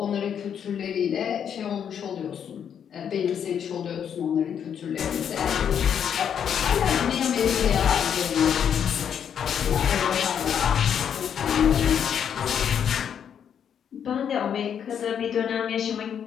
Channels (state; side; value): quieter; right; 8.3 dB